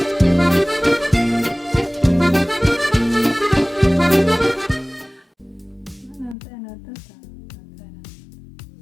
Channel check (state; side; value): drops out; right; at 6.4 s